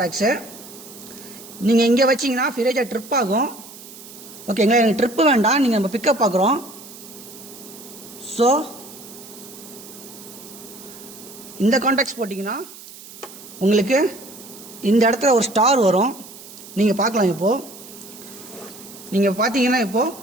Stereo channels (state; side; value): noise; right; hiss, 17 dB below the sound